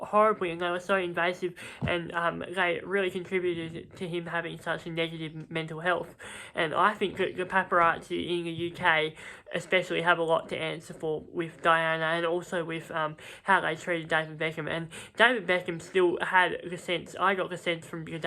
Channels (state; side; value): identical; both; correlation 1.00